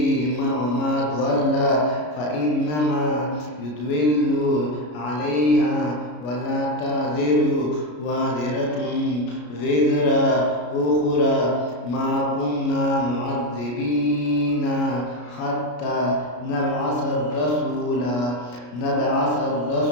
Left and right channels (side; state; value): right; late; 33 ms